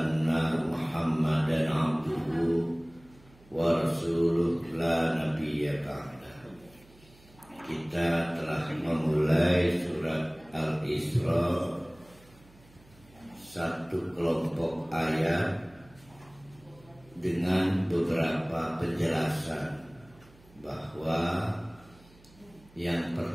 Muhammadan abduhu wa rasuluh la nabiyya ba'dahu. Kita telah memulai surat Al-Isra, satu kelompok ayat dengan beberapa penjelasan bahwa yang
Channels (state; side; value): noise; right; hum, 26 dB below the sound